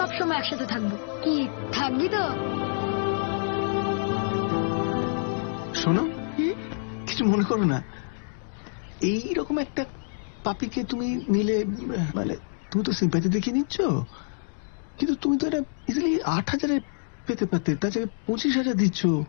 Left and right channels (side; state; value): right; silent; 60 dB below the other